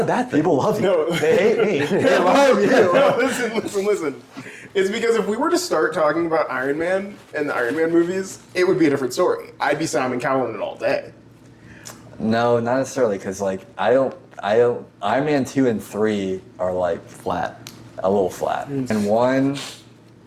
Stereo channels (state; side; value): identical; both; correlation 1.00